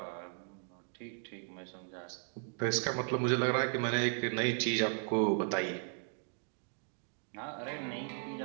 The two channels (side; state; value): left; silent; 54 dB below the other